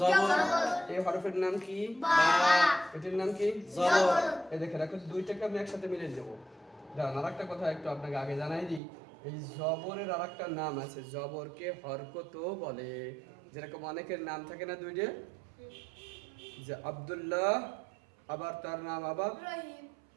এই হরফের নাম কি? বা, এটার নাম কি? জবর, এই দেখেন এখন দুইটাকে আমি একসাথে মিলে দেবো। দাঁড়ান, আর একটা কথা একটু আপনাকে আগে জানাই দিই। এই জবরের আর একটা নাম আছে, জবরকে হরকতও বলে। যেরকম অনেকের নাম থাকে না দুইটা, যে আব্দুল্লাহ, আবার তার নাম আবার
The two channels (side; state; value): left; drops out; at 8.8 s